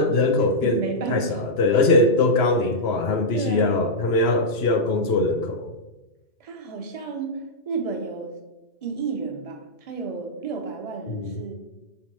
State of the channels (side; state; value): right; late; 2.9 ms